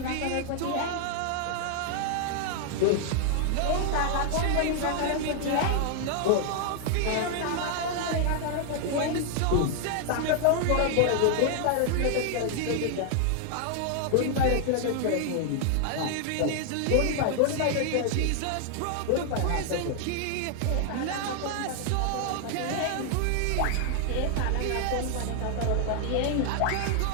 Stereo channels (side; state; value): both; different; correlation 0.00